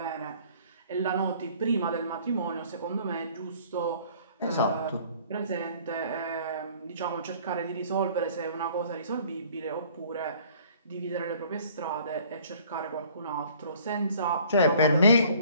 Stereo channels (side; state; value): both; inverted; correlation -0.54